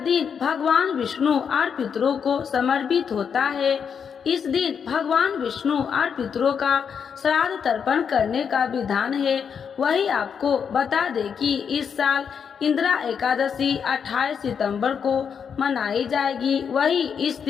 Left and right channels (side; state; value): right; quieter; 7.0 dB